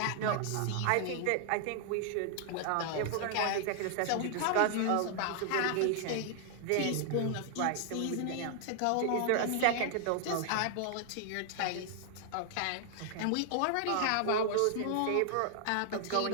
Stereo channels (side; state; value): both; different; correlation 0.00